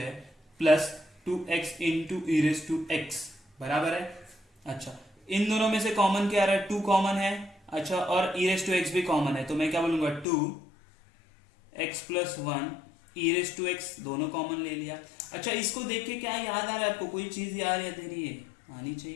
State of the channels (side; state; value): right; drops out; at 10.2 s